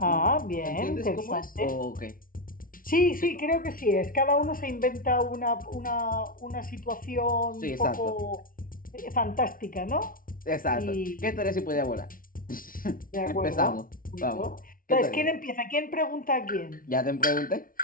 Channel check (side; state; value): right; late; 0.41 ms